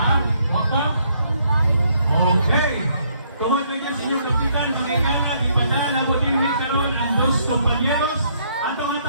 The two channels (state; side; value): inverted; both; correlation -0.69